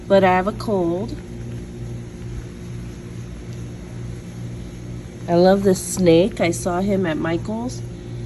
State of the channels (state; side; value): identical; both; correlation 1.00